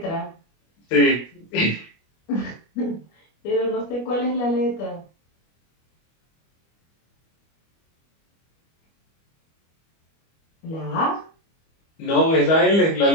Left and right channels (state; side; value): late; right; 25 ms